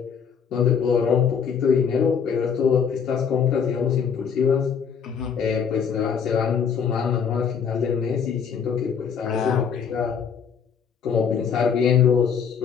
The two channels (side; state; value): right; quieter; 6.9 dB